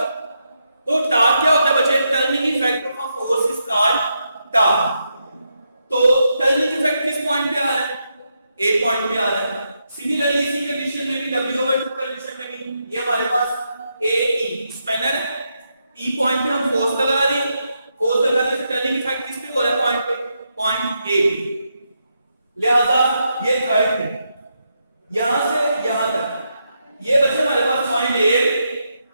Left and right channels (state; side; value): inverted; both; correlation -0.82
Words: तो टार्क क्या होता है बच्चे, turning effect of a force is called torque. तो टर्निंग इफेक्ट किस पॉइंट पे आ रहा है, A पॉइंट पे आ रहा है। सिमिलरली इसी कंडीशन में भी W/2 कंडीशन में भी ये हमारे पास AE स्पैनर है, E पॉइंट पे हम फोर्स लगा रहे हैं, फोर्स लगाने से टर्निंग इफेक्ट किस पे हो रहा है, पॉइंट पे, पॉइंट A पे। लिहाजा ये थर्ड है, यहां से यहां तक ये बच्चे हमारे पास पॉइंट A,